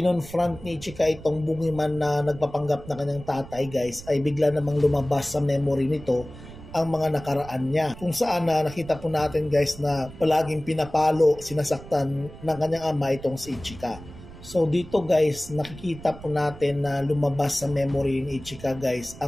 ni Ichika itong Boogeyman na nagpapanggap na kanyang tatay guys, ay bigla namang lumabas sa memory nito ang mga nakaraan niya. Kung saan nakita po natin guys na palaging pinapalo, sinasaktan ng kanyang ama itong si Ichika. So dito guys, nakikita po natin na lumabas sa memory ni Ichika guys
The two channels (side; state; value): right; noise; rumble, 16 dB below the sound